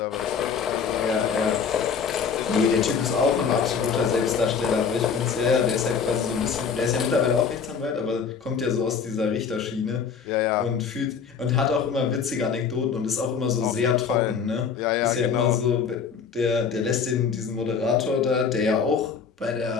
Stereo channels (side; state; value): right; quieter; 6.3 dB